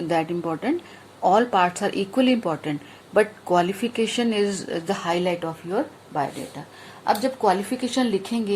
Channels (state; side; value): identical; both; correlation 1.00